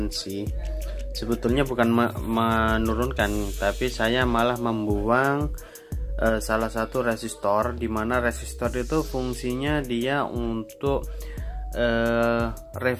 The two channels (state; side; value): identical; both; correlation 1.00